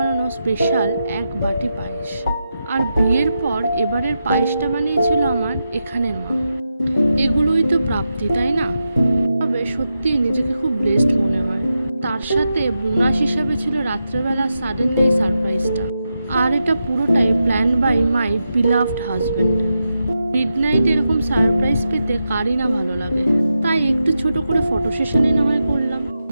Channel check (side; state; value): both; inverted; correlation -0.88